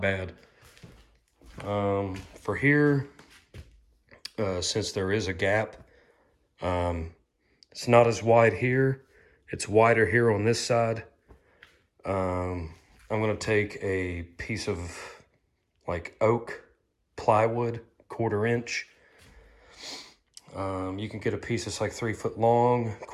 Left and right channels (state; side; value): identical; both; correlation 1.00